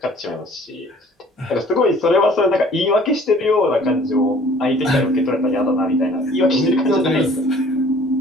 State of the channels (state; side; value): normal; both; correlation 0.53